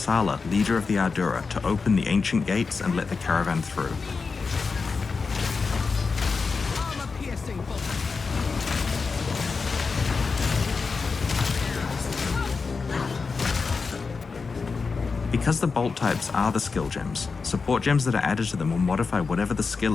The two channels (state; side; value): quieter; right; 4.7 dB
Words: leader of the Ardura, to open the ancient gates and let the caravan through. Armor-piercing bolts. Because the bolt types are the skill gems, support gems that are added to them will modify whatever the skill